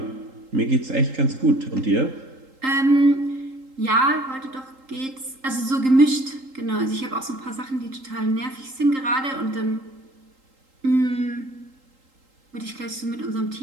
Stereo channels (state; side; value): late; left; 3.8 ms